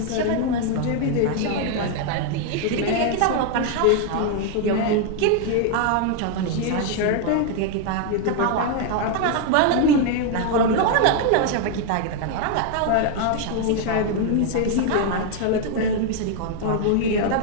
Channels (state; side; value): different; both; correlation 0.00